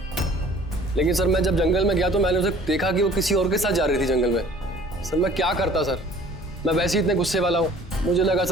लेकिन सर मैं जब जंगल में गया तो मैंने उसे देखा कि वो किसी और के साथ जा रही थी जंगल में। सर मैं क्या करता सर, मैं वैसे ही इतने गुस्से वाला हूँ। मुझे लगा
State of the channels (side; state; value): both; normal; correlation 0.51